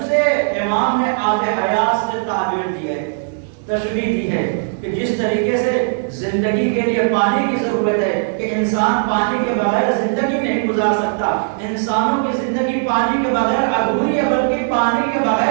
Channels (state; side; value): silent; left; 67 dB below the other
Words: سے امام نے آب حیات سے تعبیر دی ہے، تشبیہ دی ہے کہ جس طریقے سے زندگی کے لیے پانی کی ضرورت ہے کہ انسان پانی کے بغیر زندگی نہیں گزار سکتا، انسانوں کی زندگی پانی کے بغیر ادھوری ہے، بلکہ پانی کے